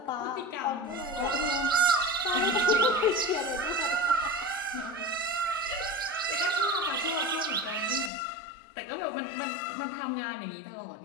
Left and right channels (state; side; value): drops out; right; at 8.1 s